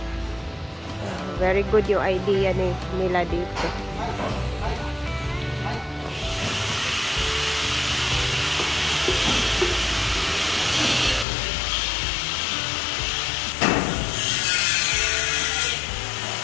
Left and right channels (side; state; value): right; drops out; at 11.2 s